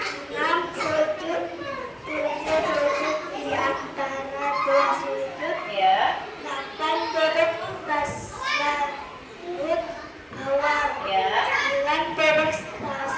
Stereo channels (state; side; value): identical; both; correlation 1.00